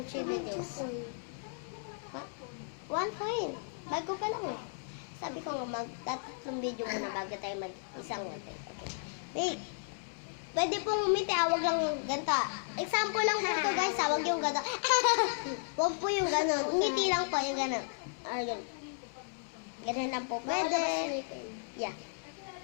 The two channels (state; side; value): silent; right; digital silence